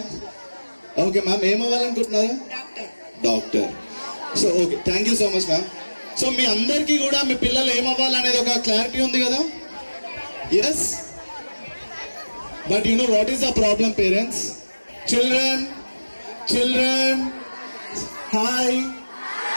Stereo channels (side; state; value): both; inverted; correlation -1.00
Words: ఓకే మ్యామ్, ఏం అవ్వాలనుకుంటున్నారు? Doctor. So okay, thank you so much ma'am. So మీ అందరికీ కూడా మీ పిల్లలు ఏమవ్వాలనేది ఒక క్లారిటీ ఉంది కదా? Yes. But you know what is the problem parents? Children hi